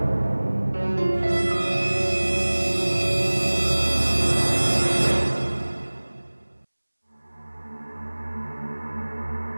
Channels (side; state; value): both; inverted; correlation -1.00